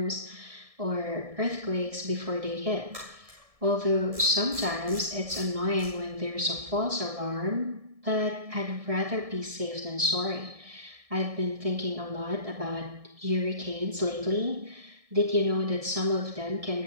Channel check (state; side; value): late; left; 1.7 ms